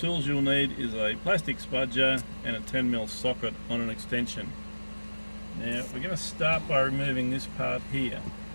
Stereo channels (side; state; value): both; inverted; correlation -1.00